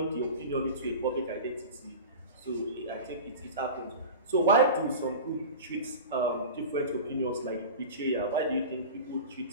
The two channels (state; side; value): inverted; both; correlation -0.32